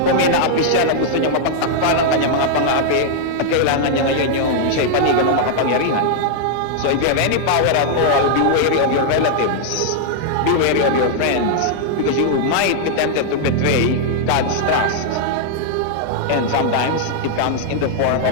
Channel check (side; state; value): both; different; correlation -0.01